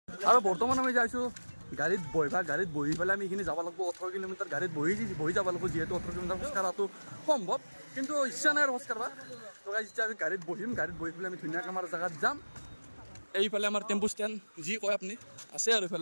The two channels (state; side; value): inverted; both; correlation -1.00